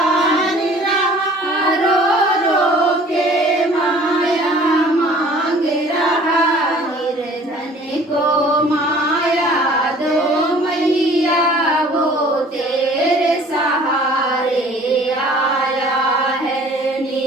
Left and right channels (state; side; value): normal; both; correlation 0.51